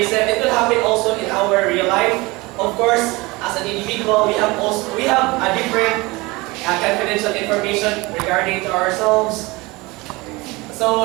it will happen also in our real life. Of course, as an individual, we have a different confidential information regarding to ourselves.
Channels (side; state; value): left; quieter; 23.1 dB